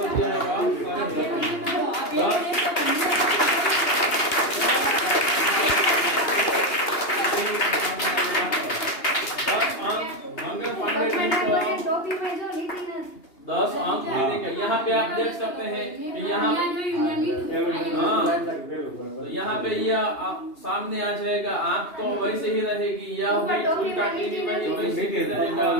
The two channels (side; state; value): right; late; 2.8 ms